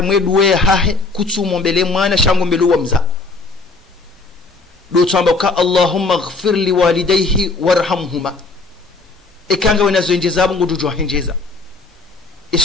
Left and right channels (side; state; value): right; quieter; 3.7 dB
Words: mwedua ya hahe kutsumo mbele mwana shango mbele wa mza do tsamba ka Allahumma ighfir li walidayhi warhamhuma ikanga wenazo njeza bungu dujo henjeza